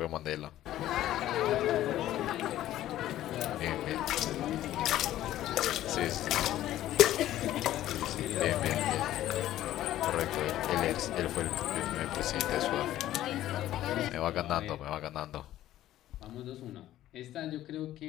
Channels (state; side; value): quieter; right; 13.5 dB